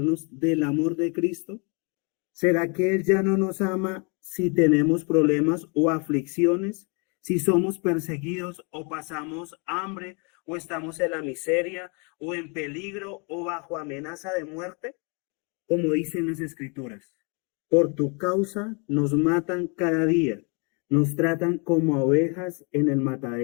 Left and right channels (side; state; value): right; quieter; 33.9 dB